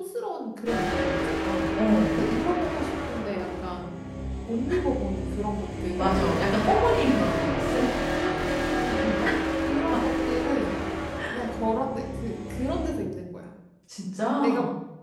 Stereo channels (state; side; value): identical; both; correlation 1.00